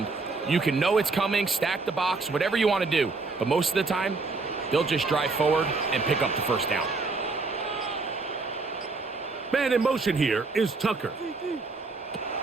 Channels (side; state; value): left; quieter; 3.9 dB